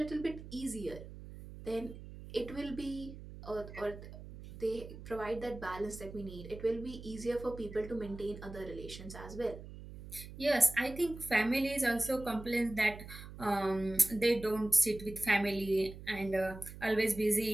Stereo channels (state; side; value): noise; right; hum, 13 dB below the sound